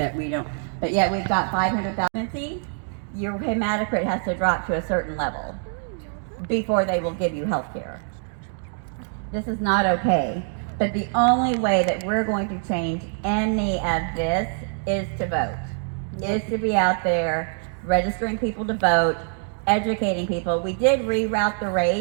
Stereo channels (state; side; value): silent; left; 57 dB below the other